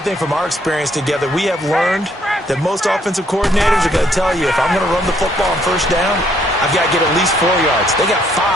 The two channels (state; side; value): normal; both; correlation 0.68